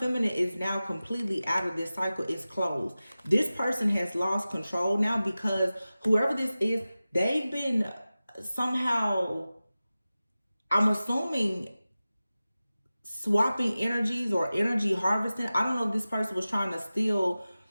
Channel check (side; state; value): both; inverted; correlation -0.96